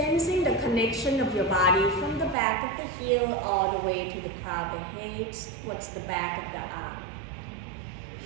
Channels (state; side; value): drops out; left; at 2.4 s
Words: the connection of your body from the back of the heel all the way to the crown of the head towards the back of the arm.